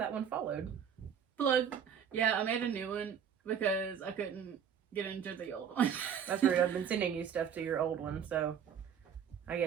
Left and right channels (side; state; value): left; quieter; 8.0 dB